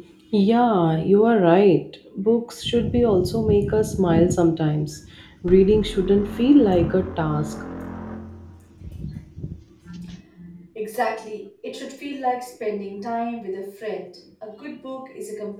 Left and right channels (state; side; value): identical; both; correlation 1.00